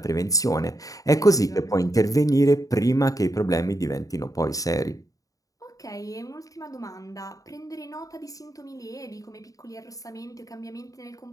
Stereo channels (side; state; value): right; late; 0.17 ms